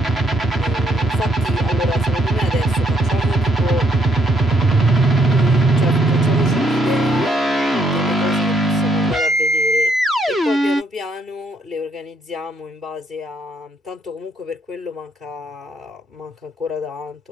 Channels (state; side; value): normal; both; correlation 0.72